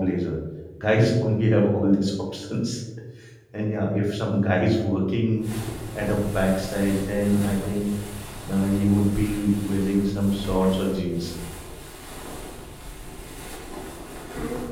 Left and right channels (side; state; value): both; identical; correlation 1.00